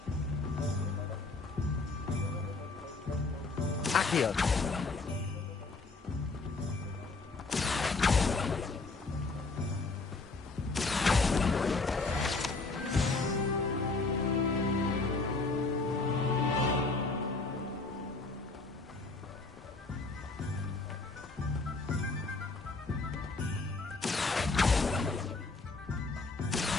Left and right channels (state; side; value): quieter; right; 3.7 dB